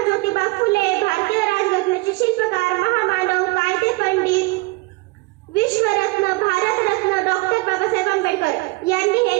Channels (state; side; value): quieter; left; 24.5 dB